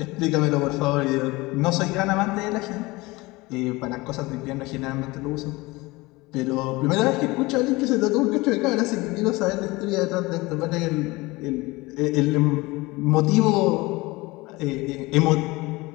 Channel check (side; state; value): right; quieter; 22.1 dB